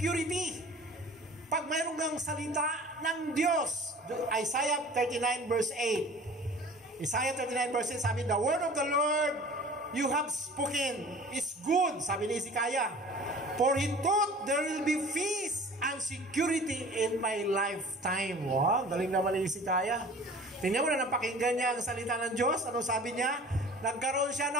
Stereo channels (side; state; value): both; normal; correlation 0.44